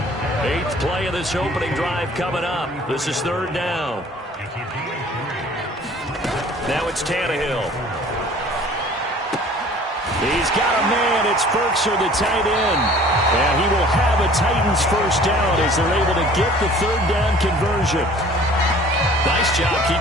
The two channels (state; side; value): normal; both; correlation 0.50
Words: 8th play of this opening drive coming up. This is 3rd down. Now it's Tannehill. He's got a man. It's Forkser, the tight end. And he will have a Titans first down as they're able to get the 3rd down conversion. Nice job